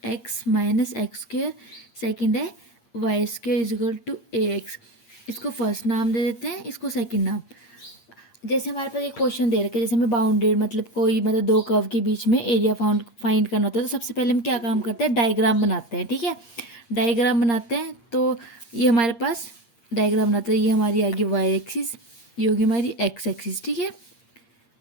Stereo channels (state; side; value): late; right; 8.6 ms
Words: minus x square. Second है Y square is equal to ax। इसको फर्स्ट नाम दे देते हैं, इसको सेकंड नाम। जैसे हमारे पास एक क्वेश्चन दे रखे, जैसे हमें बाउंडेड मतलब कोई मतलब दो कर्व के बीच में एरिया फाइंड करना होता है, तो सबसे पहले हम क्या काम करते हैं, डायग्राम बनाते हैं। ठीक है, डायग्राम बनाते हैं। तो ये हमारे पास डायग्राम बनाते हैं, ये हमारी आगे वाई एक्सिस, ये होगी हमारी एक्स एक्सिस। ठीक है,